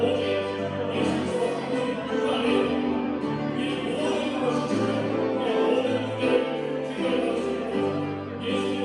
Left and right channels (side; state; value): both; identical; correlation 1.00